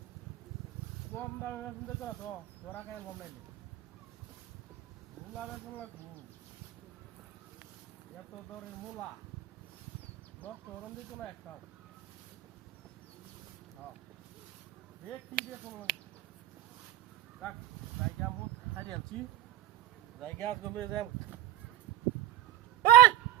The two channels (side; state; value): left; quieter; 13.3 dB